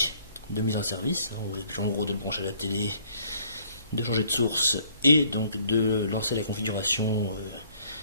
de mise en service, en gros de le brancher à la télé, de changer de source et donc de lancer la configuration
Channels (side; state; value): both; inverted; correlation -0.61